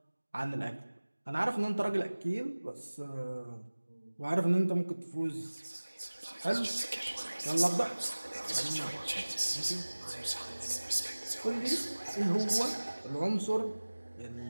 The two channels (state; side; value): inverted; both; correlation -1.00